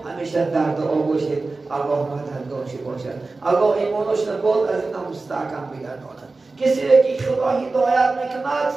همیشه در دعا باشید الله مددگارش باشد الله ایمانش نباد از این مستحکم بگرداند کسی را که خدا هدایت میکند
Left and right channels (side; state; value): left; quieter; 3.6 dB